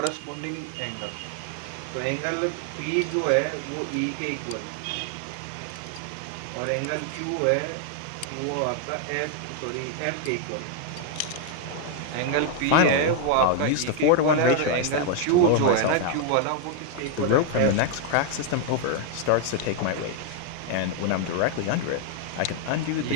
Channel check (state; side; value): different; both; correlation 0.00